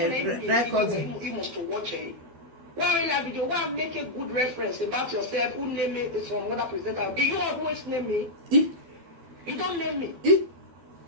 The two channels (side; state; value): left; late; 12 ms